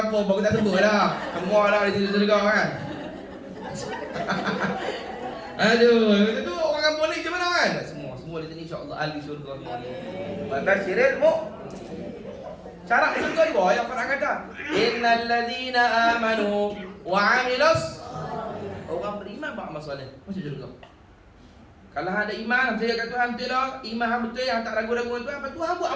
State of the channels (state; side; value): identical; both; correlation 1.00